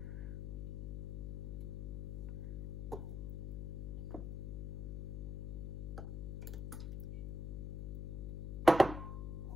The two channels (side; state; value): left; noise; hum, 3 dB below the sound